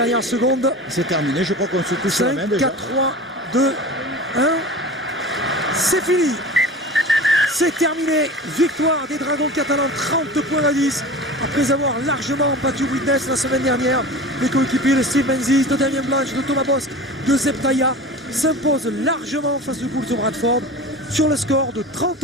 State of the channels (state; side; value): normal; both; correlation 0.35